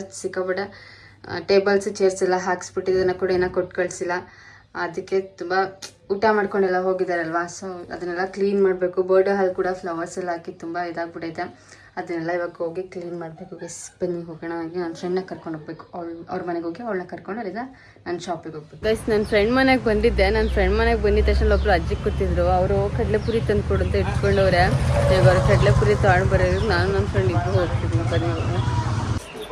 ಸಿಕ್ಕಾಬಿಟ್ಟೆ ಟೇಬಲ್ಸ್ ಚೇರ್ಸ್ ಎಲ್ಲ ಹಾಕ್ಸ್ಬಿಟ್ಟಿದ್ದನ್ನು ಕೂಡ ಏನೋ ಕೊಟ್ಟು ಕಳಿಸಿಲ್ಲ. ಅದಕ್ಕೆ ತುಂಬ ಊಟ ಮಾಡ್ಕೊಂಡೆಲ್ಲ ಹೋಗಿದ್ದಾರಲ್ವ. ಸೊ ಅದನ್ನೆಲ್ಲ ಕ್ಲೀನ್ ಮಾಡಬೇಕು. ಬರ್ಡೇ ಹಾಲ್ ಕೂಡ ಫ್ಲವರ್ಸ್ ಎಲ್ಲ ಹಾಕಿ ತುಂಬ ಇದಾಗ್ಬಿಟ್ಟೈತೆ. ಅದನ್ನೆಲ್ಲ ಇವಾಗ ಹೋಗಿ ಕ್ಲೀನ್ ಮಾಡಬೇಕು. ಬನ್ನಿ ಹೋಗೋಣ. ಹಾಗೆ ನನ್ನ ಫ್ರೆಂಡ್ನ ಕರ್ಕೊಂಡು ಹೋಗ್ಬೇಕು. ಅವ್ರ ಮನೆಗೆ ಹೋಗಿ ಅವಳನ್ನ ಕರ್ಕೊಂಡು ಅಲ್ಲಿಂದ ನಾನು ಶಾಪಿಗೆ ಹೋಗ್ಬೇಕು. ಗೈಸ್, ನನ್ನ ಫ್ರೆಂಡ್ ಮನೆಗೆ ಬಂದಿದ್ದೆ. ನನ್ನ ಫ್ರೆಂಡ್ ಮನೆಗೆ ಬಂದಿದ್ದ ತಕ್ಷಣ ಒಬ್ಬರು ಅಜ್ಜಿ ಕೂತಿದ್ರು. ಅವರು ಕಡಲೆಪುರಿ ತಂದು ಕೊಡು ಅಂತ ಇಟ್ಕೊಂಡವ್ರೆ. ಇವಾಗ ಅವ್ರು ಕಡಲೆಪುರಿ ತೊಗೊಂಡು ಬರೋದು ನಾನು ನನ್ನ ಫ್ರೆಂಡ್ ಇಬ್ಬರು ಹೋಗ್ತಿದ್ವಿ. ಬನ್ನಿ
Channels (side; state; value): both; identical; correlation 1.00